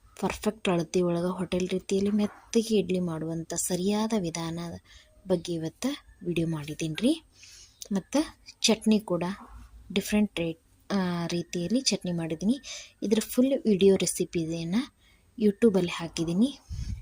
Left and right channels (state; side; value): identical; both; correlation 1.00